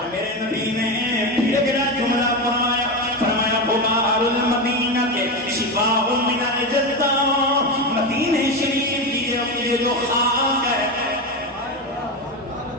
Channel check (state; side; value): normal; both; correlation 0.16